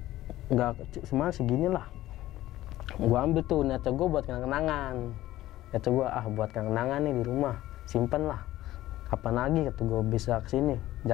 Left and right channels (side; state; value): right; quieter; 15.3 dB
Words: nggak semua segini lah. Gue ambil tuh, niatnya gue buat kenang-kenangan, buat kenang-kenangan nih di rumah, simpen lah, kapan lagi kata gue bisa kesini.